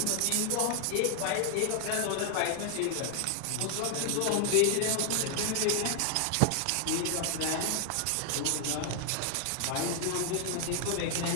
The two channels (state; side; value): different; both; correlation 0.00